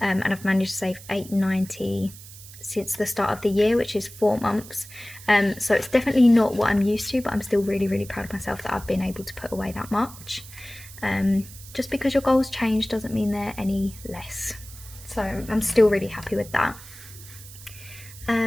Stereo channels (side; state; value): right; noise; hiss, 17 dB below the sound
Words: I've managed to save £890 since the start of the year, which is 4 months. So it's definitely not what I'm used to, but I'm still really, really proud of myself that I've been able to put away that much. Just because your goals change doesn't mean they're any less. So I'm still really happy with that.